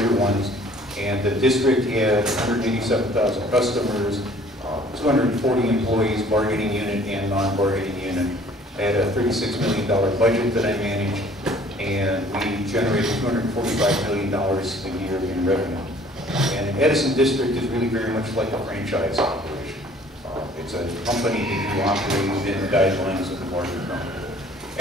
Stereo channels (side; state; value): both; normal; correlation 0.54